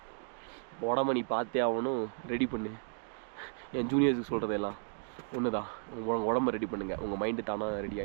உடம்ப நீ பார்த்தே ஆகணும், ரெடி பண்ணு. என் ஜூனியர்ஸுக்கு சொல்கிறதெல்லாம் ஒன்று தான், உங்கள் உடம்ப ரெடி பண்ணுங்கள், உங்கள் மைண்டு தானாக ரெடி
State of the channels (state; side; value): silent; left; 55 dB below the other